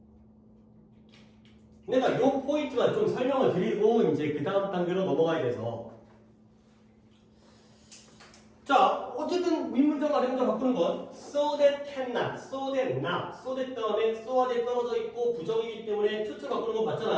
내가 요 포인트만 좀 설명을 드리고 이제 그 다음 단계로 넘어가야 돼서 자, 어쨌든 윗문장 아랫문장 바꾸는 건 so that cannot, so that not, so that 다음에 so와 that 떨어져 있고 부정이기 때문에 투투 바꾸는 거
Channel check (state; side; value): identical; both; correlation 1.00